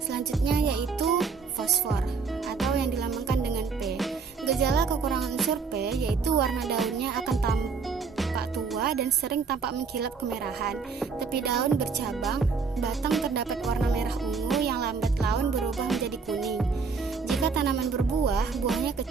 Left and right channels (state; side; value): quieter; left; 5.1 dB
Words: Selanjutnya yaitu fosfor atau yang dilambangkan dengan P. Gejala kekurangan unsur P yaitu warna daunnya akan tampak tua dan sering tampak mengkilap kemerahan. Tepi daun bercabang, batang terdapat warna merah ungu yang lambat laun berubah menjadi kuning. Jika tanaman berbuah, buahnya